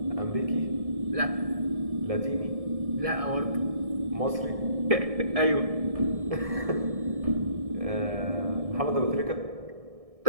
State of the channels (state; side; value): late; left; 1.6 ms